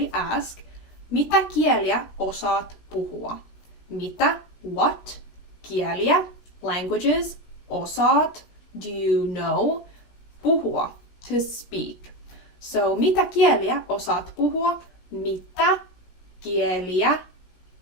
ask, mitä kieliä osaat puhua? Mitä, what, kieliä, languages, osaat, do you know, puhua, to speak. So mitä kieliä osaat puhua? Mitä kieliä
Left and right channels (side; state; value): right; late; 17 ms